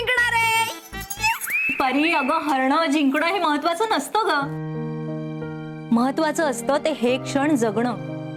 आहे. परी, अगं हरणं जिंकणं हे महत्वाचं नसतं ग. महत्वाचं असतं ते हे क्षण जगणं,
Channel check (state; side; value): identical; both; correlation 1.00